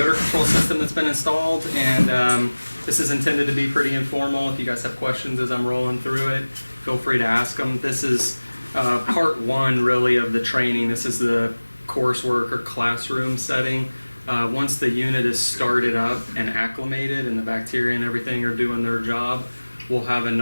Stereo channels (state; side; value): inverted; both; correlation -1.00